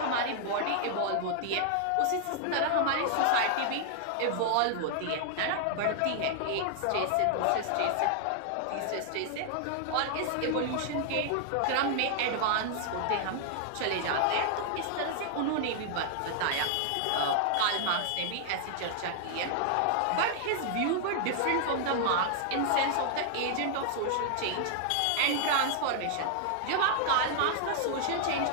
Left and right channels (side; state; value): both; different; correlation -0.01